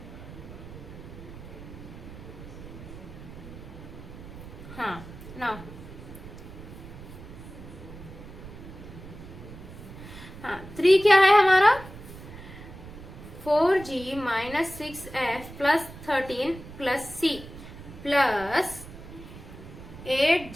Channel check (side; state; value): right; noise; rumble, 14 dB below the sound